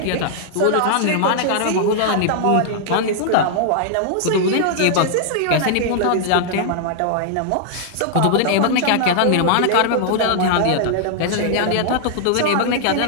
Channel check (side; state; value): both; different; correlation -0.01